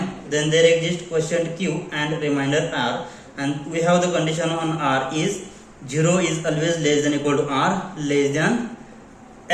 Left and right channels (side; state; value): both; identical; correlation 1.00